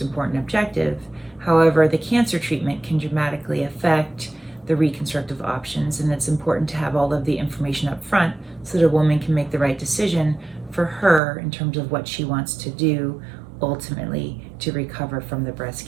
objective. However, the cancer treatment can dramatically affect the reconstructive options, and it's important to have all of the information up front so that a woman can make the right decision for her in terms of what she wants to do ultimately to recover from the breast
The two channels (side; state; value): left; drops out; at 11.2 s